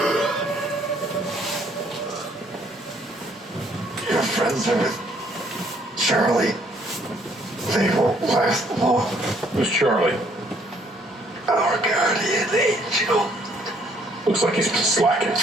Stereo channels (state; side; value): normal; both; correlation 0.65